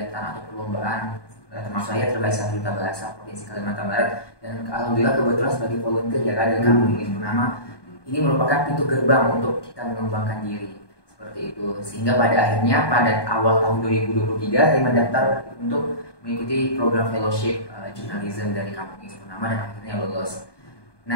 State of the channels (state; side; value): late; right; 1.2 ms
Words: atau perlombaan. Termasuk saya terbaik 1 duta bahasa Provinsi Kalimantan Barat, dan alhamdulillah kebetulan sebagai volunteer ya Kak dari Kampung Ilis Purnama. Ini merupakan pintu gerbang untuk kita mengembangkan diri. Itu sehingga pada akhirnya pada awal tahun 2023 saya mendaftar untuk mengikuti program fellowship jurnalisme dari Kampung Ilis Purnama dan akhirnya lulus.